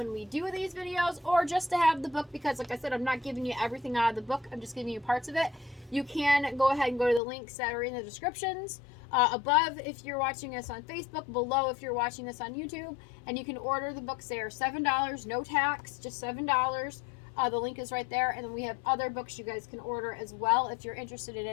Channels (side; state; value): right; drops out; at 7.2 s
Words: we do these videos, or just to have the book, because like I said, I'm not giving you everything out of the book. I'm just giving you parts of it. You can go ahead and go to the links that are in the descriptions above if you're watching us on Facebook, below if you're watching this on YouTube, and you can order the books there. $7, no tax, just $7. The link is right there, and then we have other books you guys can order as well if you're interested in